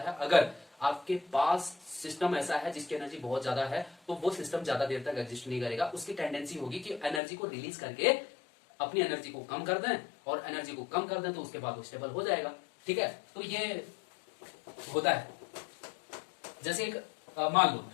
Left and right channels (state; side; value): drops out; right; at 7.2 s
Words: अगर आपके पास सिस्टम ऐसा है जिसकी एनर्जी बहुत ज्यादा है, तो वो सिस्टम ज्यादा देर तक एग्जिस्ट नहीं करेगा। उसकी टेंडेंसी होगी कि एनर्जी को रिलीज करके अपनी एनर्जी को कम कर दें, और एनर्जी को कम कर दें तो उसके बाद वो स्टेबल हो जाएगा, ठीक है। तो ये होता है। जैसे एक मान लो